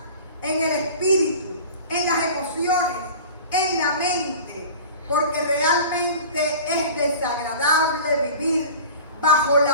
en el espíritu, en las emociones, en la mente, porque realmente es desagradable vivir bajo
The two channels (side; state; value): both; inverted; correlation -0.39